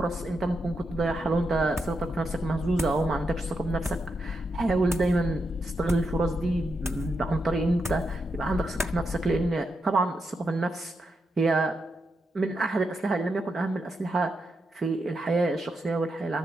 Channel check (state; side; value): normal; both; correlation 0.84